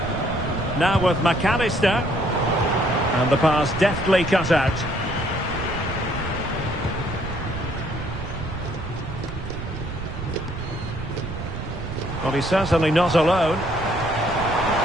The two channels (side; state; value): right; noise; rumble, 9 dB below the sound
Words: Now with McAllister. And the pass deftly cut out. Well, he's certainly not alone. He's